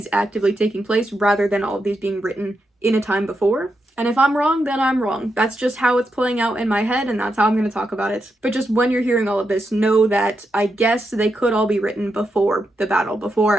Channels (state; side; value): normal; both; correlation 0.85